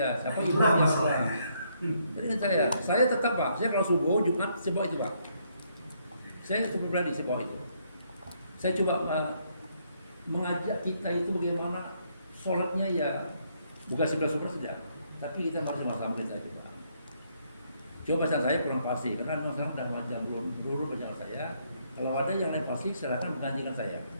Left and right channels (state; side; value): inverted; both; correlation -0.72